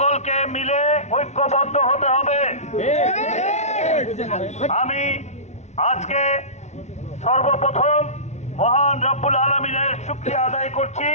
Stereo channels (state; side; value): late; right; 0.32 ms